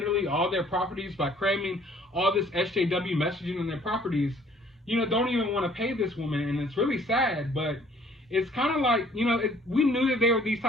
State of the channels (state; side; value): normal; both; correlation 0.58